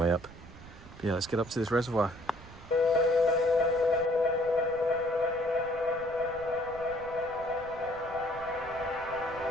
up. But yeah, let's get up to this reservoir.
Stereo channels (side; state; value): right; noise; rumble, 18 dB below the sound